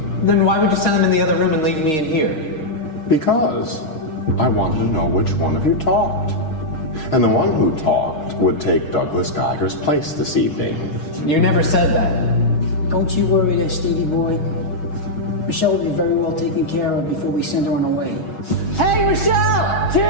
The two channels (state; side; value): late; right; 6.4 ms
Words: Then why would you send them in the other room and leave me in here? Because I wanted to know which one of you talked. And the one who talked would take Douglas Geiger's place this evening. You never said that. Don't you worry there, Stevie boy. Michelle will be very well taken care of before we send her on her way. Hey, Michelle!